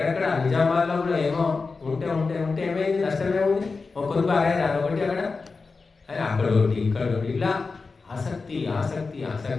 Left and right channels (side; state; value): right; quieter; 4.3 dB